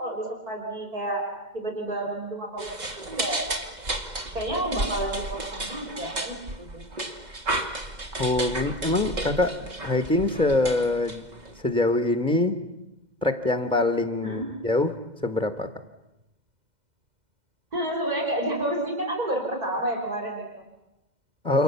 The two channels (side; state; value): left; late; 2.1 ms